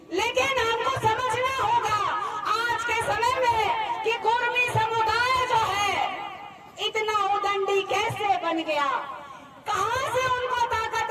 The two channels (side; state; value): both; identical; correlation 1.00